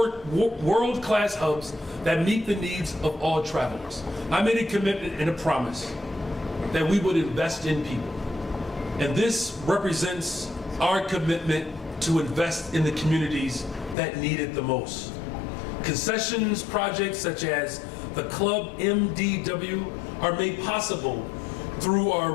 hubs that meet the needs of all travelers. I made a commitment and a promise that we would invest in people. And this represents our commitment to invest in the communities that need it the most. Concessions projects such as the Club MDW are made possible through our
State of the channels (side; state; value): right; drops out; at 14.0 s